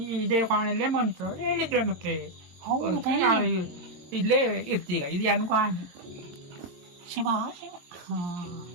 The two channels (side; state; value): left; late; 22 ms